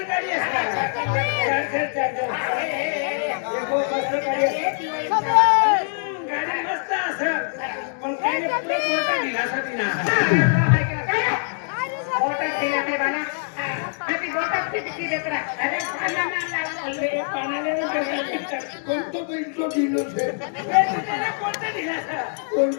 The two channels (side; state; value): right; silent; 63 dB below the other